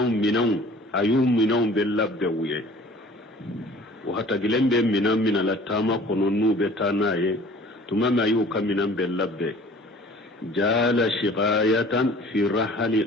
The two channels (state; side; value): normal; both; correlation 0.48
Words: minɛnw a y'u minɛnw bɛɛ labɛn u ye o hatagilen bɛ minɛn min na la taama kɔnɔ n'u bɛ taa n'a ye tuma min a y'u ka minɛn bɛɛ labɛn jala shiqayatan fi